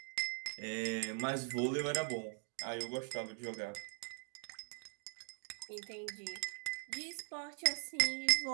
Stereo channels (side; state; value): left; silent; 50 dB below the other